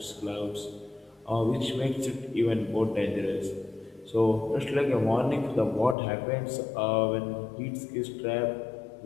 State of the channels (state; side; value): drops out; right; at 6.0 s